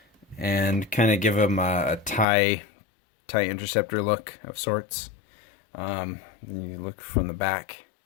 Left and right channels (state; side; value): drops out; right; at 2.2 s